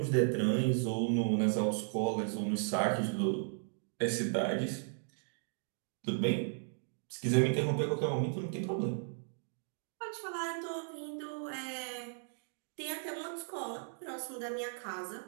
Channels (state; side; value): silent; left; digital silence